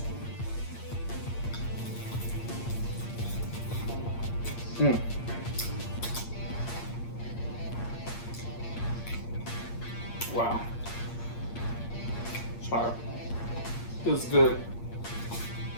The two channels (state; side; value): late; right; 8.6 ms